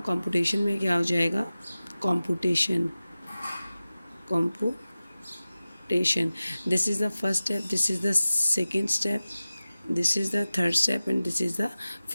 कंप्यूटेशन में क्या हो जाएगा, computation. This is the first step, this is the second step, this is the third step and this is the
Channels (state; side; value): inverted; both; correlation -0.96